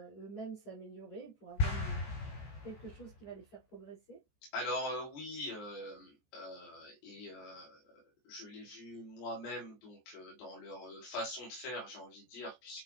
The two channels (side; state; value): right; late; 14 ms